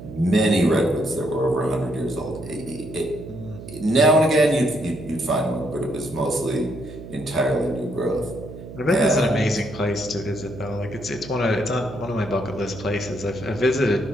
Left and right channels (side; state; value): right; noise; hum, 13 dB below the sound